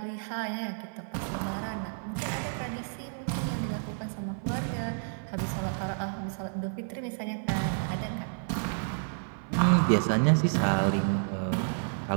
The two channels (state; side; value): silent; left; 58 dB below the other